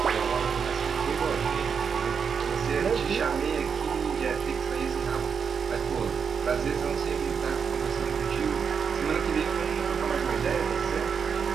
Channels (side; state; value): left; quieter; 6.5 dB